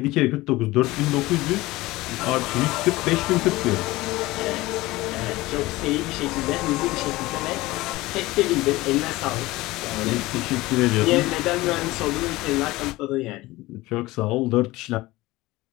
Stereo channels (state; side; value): quieter; right; 19.4 dB